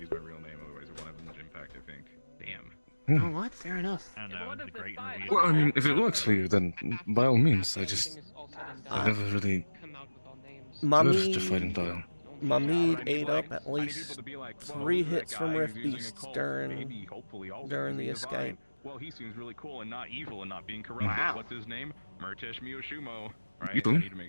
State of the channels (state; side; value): inverted; both; correlation -1.00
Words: my real name, otherwise it won't have much impact, I think. Damn. You know what? Fair enough. I don't know, it's a great movie. Well, I mean, if it works for you, then by all means. I never really My heard mead, to fighting style. my mead ate up at least 3 hits from Rift Beasts during the escape. Well, he seems really cool and not evil and not being corrupted. Wow. What's his name? Murtesh Miyoshumo. Right? You I do? need to make